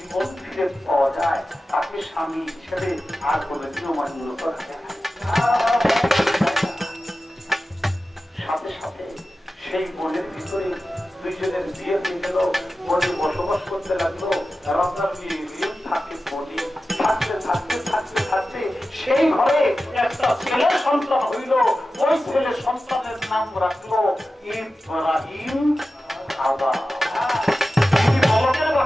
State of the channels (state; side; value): normal; both; correlation 0.94